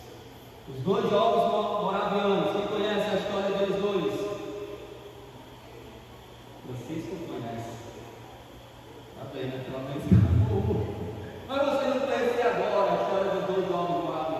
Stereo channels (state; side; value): identical; both; correlation 1.00